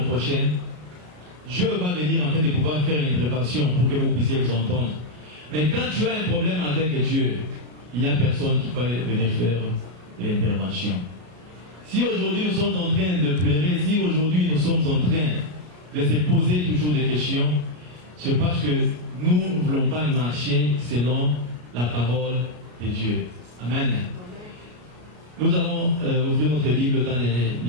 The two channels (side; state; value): left; late; 33 ms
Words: prochain, Dieu va venir en fait de pouvoir faire une intervention pour que vous puissiez vous entendre. Mais quand tu as un problème avec Dieu, il n'y a personne qui va venir faire l'intervention. Si aujourd'hui nous sommes en train de pleurer, si aujourd'hui nous sommes en train de se poser toujours des questions, c'est parce que nous ne voulons pas marcher selon la parole de Dieu. Amen. Nous allons ouvrir notre Bible dans les